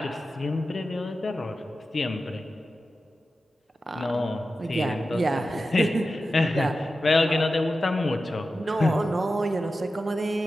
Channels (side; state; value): both; normal; correlation 0.93